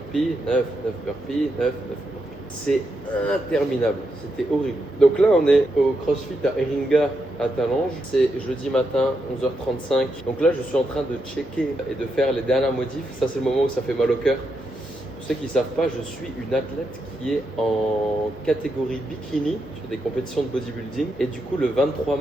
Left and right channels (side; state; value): both; normal; correlation 0.83